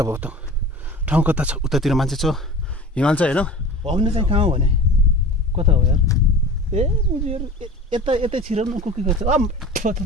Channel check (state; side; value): normal; both; correlation 0.37